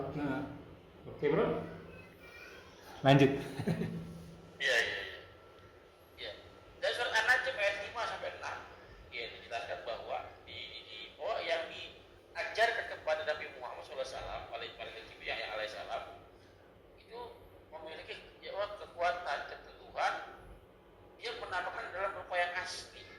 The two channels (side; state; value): both; identical; correlation 1.00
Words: Nah, oke bro, lanjut. Iya. Dan surat An-Najm ayat 5 sampai 6 ya dijelaskan bahwa yang diajarkan kepada Nabi Muhammad SAW alaihissalam itu memiliki kekuatan keteguhan. Dia menamakan dalam rupa yang asli.